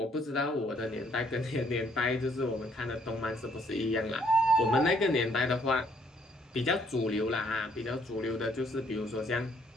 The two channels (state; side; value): normal; both; correlation 0.66